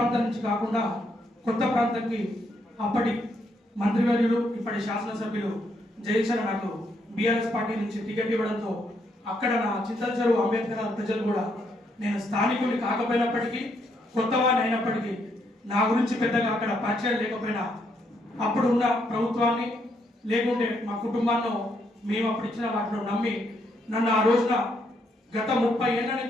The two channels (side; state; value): both; normal; correlation 0.75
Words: నుంచి కాకుండా కొత్త ప్రాంతానికి అప్పటి మంత్రివర్యులు, ఇప్పటి శాసనసభ్యులు జయచర నాకు బీఆర్ఎస్ పార్టీ నుంచి టికెట్ ఇవ్వడంతో అక్కడ నా చింతలచెరువు అంబేద్కర్ ప్రజలు కూడా నేను స్థానికుని కాకపోయినప్పటికీ, కొత్తవాడిని అయినప్పటికీ నా గురించి పెద్దగా అక్కడ పరిచయం లేకపోయినా అప్పుడు ఉన్న ప్రభుత్వాన్ని లేకుంటే మా కుటుంబాన్ని మేము అప్పుడు ఇచ్చిన వాటిలో నమ్మి నన్ను ఆ రోజున గత 30 ఏళ్ల